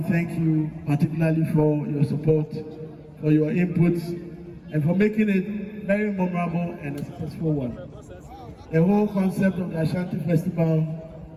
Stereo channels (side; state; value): both; identical; correlation 1.00